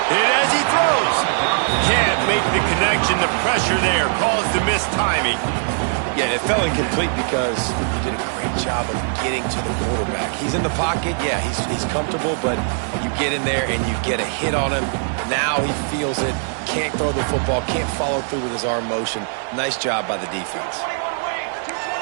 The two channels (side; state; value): left; silent; 65 dB below the other